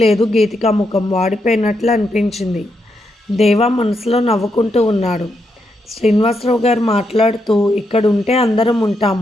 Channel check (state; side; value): normal; both; correlation 0.81